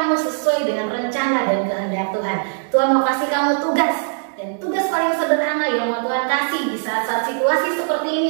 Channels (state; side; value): silent; left; digital silence